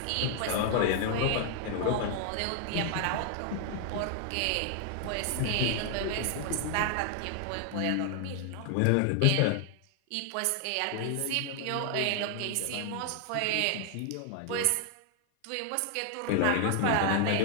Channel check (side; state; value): both; different; correlation 0.00